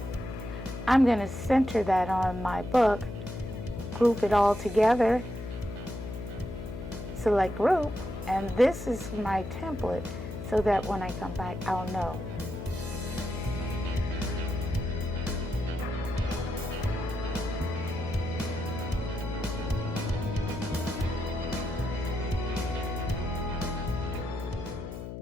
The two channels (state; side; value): noise; left; hum, 8 dB below the sound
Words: I'm going to center that on my book, group it all together, select group, and this is my template so that when I come back, I'll know.